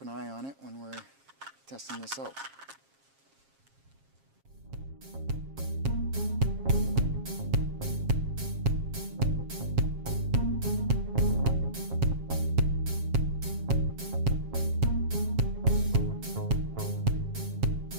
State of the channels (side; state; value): left; late; 7.4 ms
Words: an eye on it when we're testing this out.